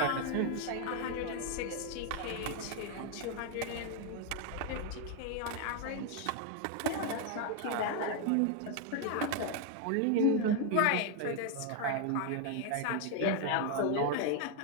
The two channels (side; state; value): both; different; correlation 0.01